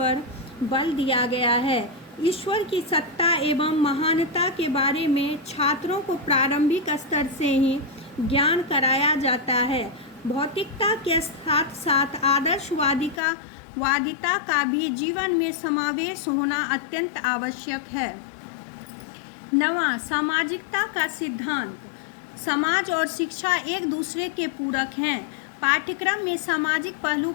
बल दिया गया है। ईश्वर की सत्ता एवं महानता के बारे में छात्रों को प्रारंभिक स्तर से ही ज्ञान कराया जाता है। भौतिकता के साथ साथ वादिता का भी जीवन में समावेश होना अत्यंत आवश्यक है। 9वां, सामाजिकता का सिद्धांत। समाज और शिक्षा एक दूसरे के पूरक हैं। पाठ्यक्रम में सामाजिक पहलू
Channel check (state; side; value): drops out; right; at 13.2 s